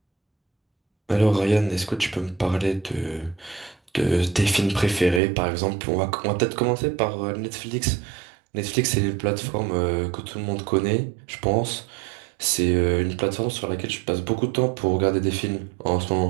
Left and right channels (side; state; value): left; drops out; at 5.2 s